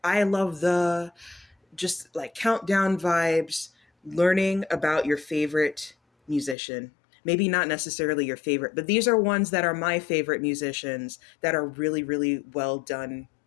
I love the just like countdown vibes, learning about your favorite musician. Maybe not necessarily your favorite, but these are ones that are my favorite musicians that are really, really well done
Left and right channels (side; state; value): right; drops out; at 6.6 s